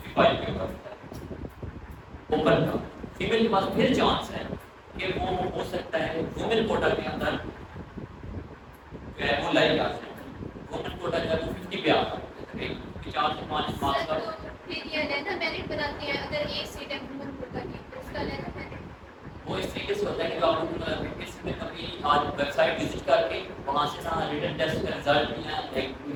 کے اوپر ہوتا ہے اوپن کا. فیمیل کے پاس پھر چانس ہے کہ وہ ہو سکتا ہے وومن کوٹا کے اندر جو ہے وہ لائی آ جائے. وومن کوٹا جو ہے وہ 50 پہ آتا ہے، 50 5 مارکس کا. پھر یہ لینا میرٹ بتاتی ہے اگر ایک سیٹ ہے وومن کوٹا کی تو اس کا لینا میرٹ وہ اس طریقے سے ہوتا ہے کہ آپ کسی میں کبھی آج ویب سائٹ وزٹ کر کے وہاں سے نا ریٹن ٹیسٹ کا رزلٹ یا ایک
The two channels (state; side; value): identical; both; correlation 1.00